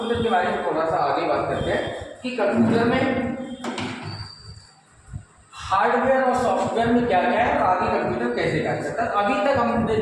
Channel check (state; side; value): identical; both; correlation 1.00